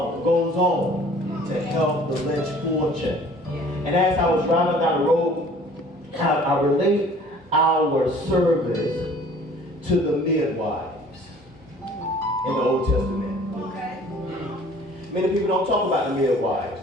on to help the less fortunate. And as I was driving down the road, I relate our service to the midwives in the Old Testament. Many people don't talk about the midwives.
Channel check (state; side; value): normal; both; correlation 0.51